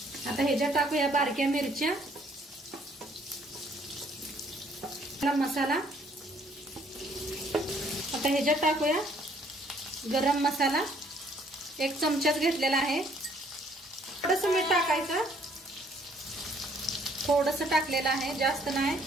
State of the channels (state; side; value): normal; both; correlation 0.63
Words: आता ह्याच्यात टाकूया बारक्या मिरच्या, मसाला, आता ह्याच्यात टाकूया गरम मसाला, 1 चमचाच घेतलेला आहे, थोडंसं मीठ टाकायचं, थोडंसं टाकलेलं आहे, जास्त नाही।